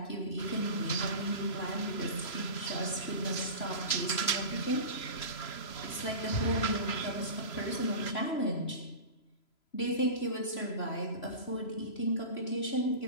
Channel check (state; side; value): late; right; 3.0 ms